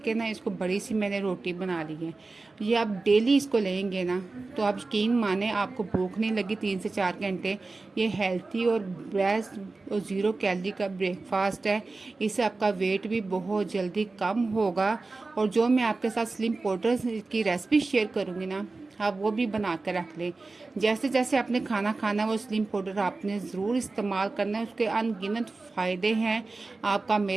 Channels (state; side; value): quieter; left; 3.6 dB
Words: के ना इसको बड़ी सी मैंने रोटी बना ली है। ये आप डेली इसको लेंगे ना, तो आप यकीन माने आपको भूख नहीं लगी 3 से 4 घंटे। ये हेल्थी और बेस्ट और ज़ीरो कैलोरी का ब्रेकफास्ट है। इससे आपका वेट भी बहुत जल्दी कम होगा। और जो मैं आपके साथ स्लिम पाउडर की रेसिपी शेयर करूँगी ना, आप वो भी बना कर रख लें। जैसे जैसे आपने खाना खाना है वो स्लिम पाउडर आपने ज़रूर इस्तेमाल करना है। उसके अनगिनत फ़ायदे हैं। आपका